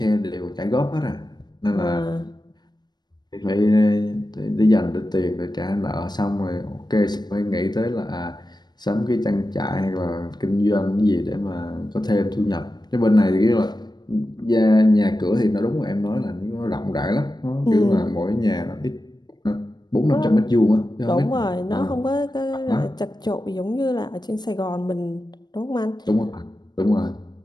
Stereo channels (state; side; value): late; right; 0.20 ms